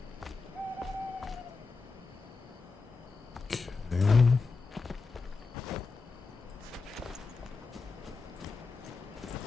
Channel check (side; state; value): right; quieter; 4.3 dB